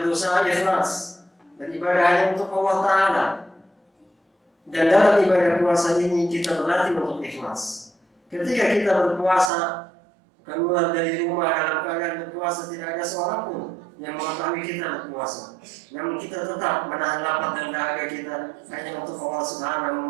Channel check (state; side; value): drops out; left; at 9.5 s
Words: berusaha ikhlas dan ibadah hanya untuk Allah Taala. Dan dalam ibadah puasa ini kita berlatih untuk ikhlas. Ketika kita berpuasa, keluar dari rumah dalam keadaan berpuasa, tidak ada seorang pun yang mengetahui kita berpuasa. Namun kita tetap menahan lapar dan dahaga kita hanya untuk Allah